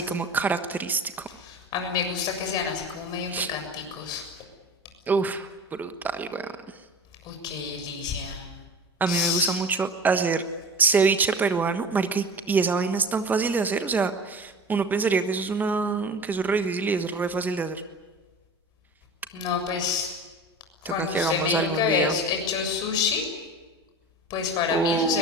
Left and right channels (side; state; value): both; normal; correlation 0.35